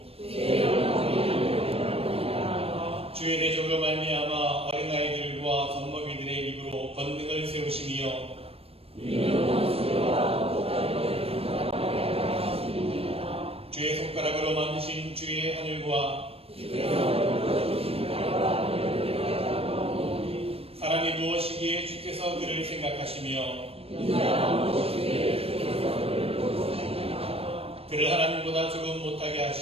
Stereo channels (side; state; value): left; late; 0.28 ms